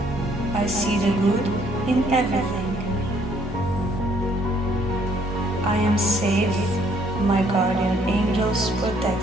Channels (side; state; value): both; normal; correlation 0.65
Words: I see the good in everything. I am safe. My guardian angels